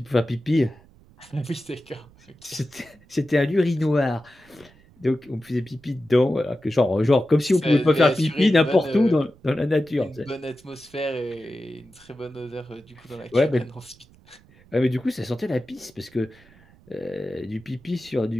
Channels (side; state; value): right; noise; rumble, 27 dB below the sound